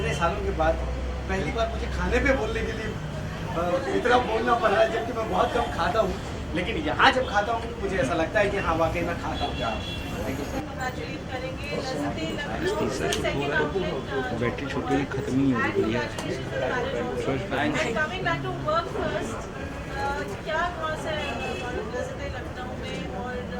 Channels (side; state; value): both; identical; correlation 1.00